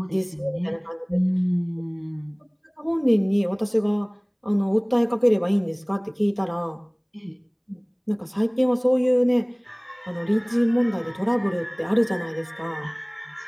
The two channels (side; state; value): both; identical; correlation 1.00